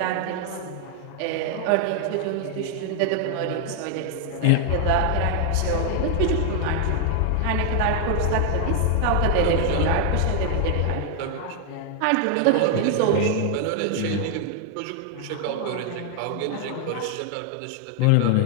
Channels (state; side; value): different; both; correlation 0.00